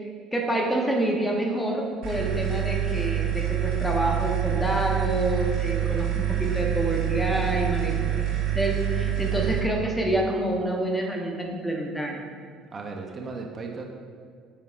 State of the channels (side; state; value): left; quieter; 4.1 dB